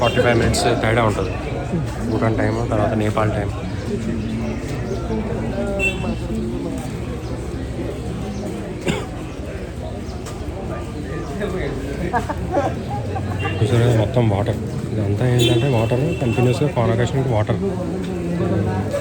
మినిట్స్ తేడా ఉంటుంది. భూటాన్ టైం తర్వాత నేపాల్ టైం. చూసారా మొత్తం వాటర్. ఇదంతా ఏంటంటే వాటర్ కంటిన్యూస్గా కాన్వకేషన్కి వాటర్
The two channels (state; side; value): identical; both; correlation 1.00